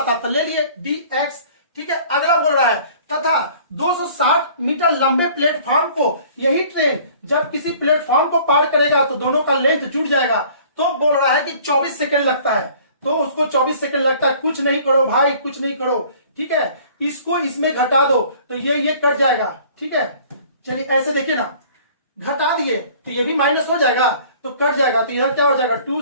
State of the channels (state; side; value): inverted; both; correlation -0.51